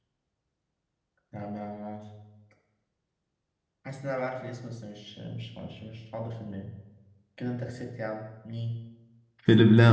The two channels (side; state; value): both; identical; correlation 1.00